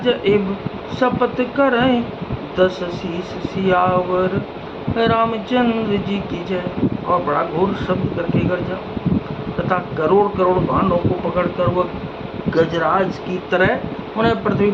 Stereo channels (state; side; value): identical; both; correlation 1.00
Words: इब, शपथ करें दस शीस सियावर। रामचंद्र जी की जय। और बड़ा घोर शब्द करके गरजा तथा करोड़ करोड़ बाणों को पकड़कर वह गजराज की तरह उन्हें पृथ्वी